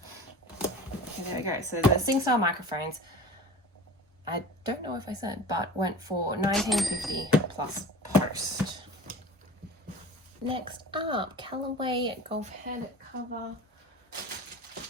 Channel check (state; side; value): normal; both; correlation 0.38